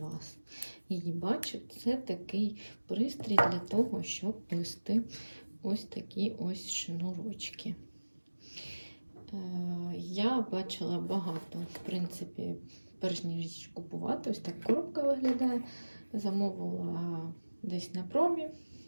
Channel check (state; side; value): inverted; both; correlation -1.00